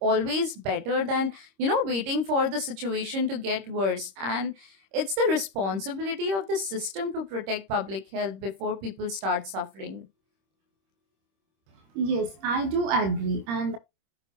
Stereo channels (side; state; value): left; late; 26 ms